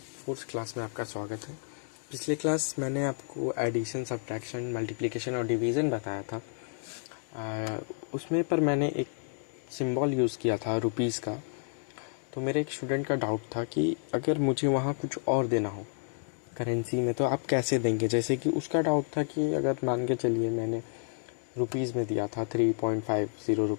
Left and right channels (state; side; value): silent; right; 56 dB below the other